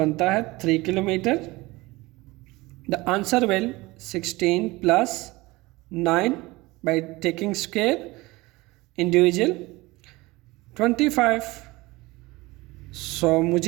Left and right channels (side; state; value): left; quieter; 21.4 dB